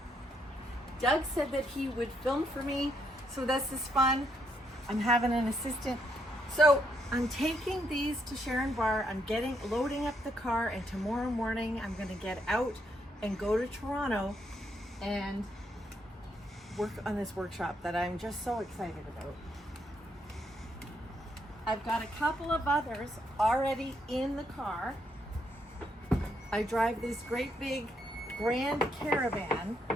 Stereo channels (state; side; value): normal; both; correlation 0.75